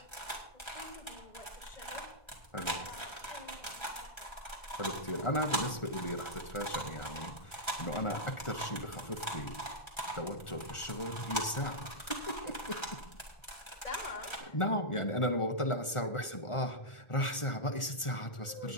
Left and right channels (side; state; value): right; late; 1.4 ms